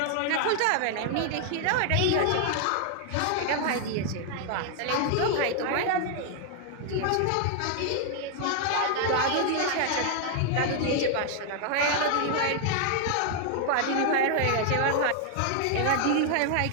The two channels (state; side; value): different; both; correlation 0.00